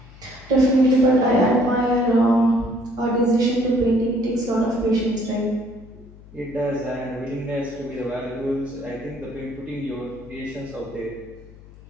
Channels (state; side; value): noise; left; hum, 21 dB below the sound